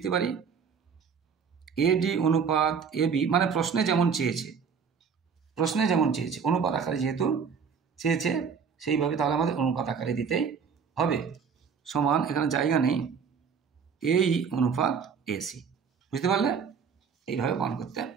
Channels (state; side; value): quieter; left; 6.3 dB